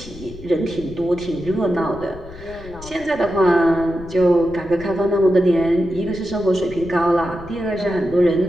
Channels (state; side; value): noise; left; rumble, 17 dB below the sound